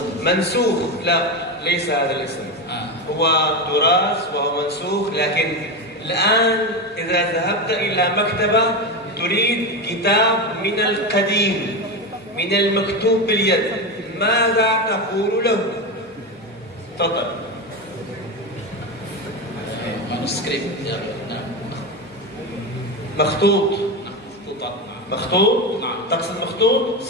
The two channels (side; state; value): both; normal; correlation 0.17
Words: منسوخ. لا، ليس هذا الاسم. هو تراث وهو منسوخ، لكن الآن إذا ذهبت إلى مكتبة تريد كتاب من القديم من المكتوب باليد، ماذا تقول له؟ تفضل. manuskrip ya. مخطوط. مخطوط. نعم. تقصد مخطوط؟